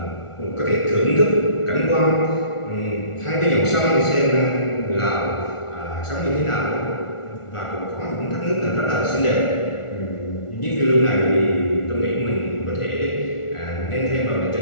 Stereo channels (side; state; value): right; late; 1.4 ms